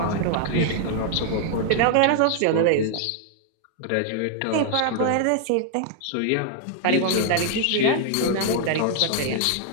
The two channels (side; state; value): both; different; correlation 0.00